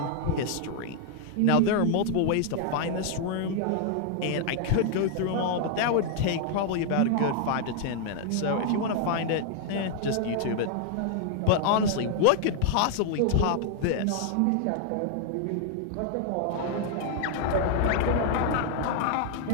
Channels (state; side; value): different; both; correlation 0.00